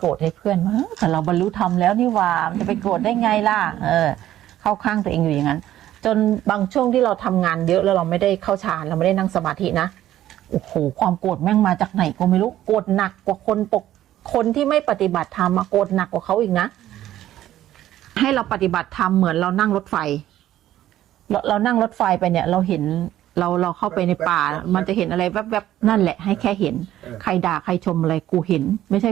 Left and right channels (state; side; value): quieter; left; 13.0 dB